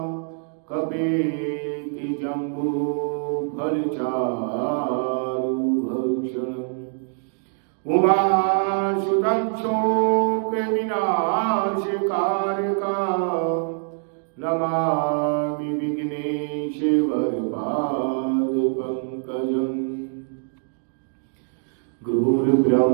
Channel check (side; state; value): left; silent; 60 dB below the other